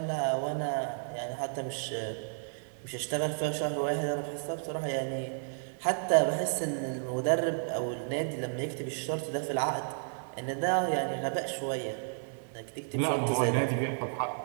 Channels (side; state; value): left; silent; digital silence